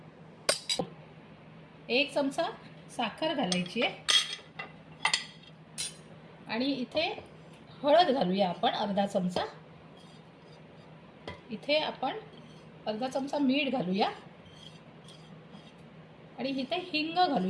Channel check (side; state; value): both; identical; correlation 1.00